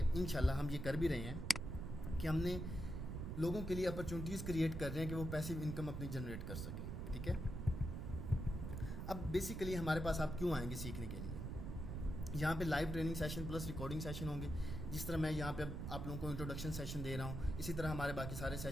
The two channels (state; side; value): noise; right; rumble, 4 dB below the sound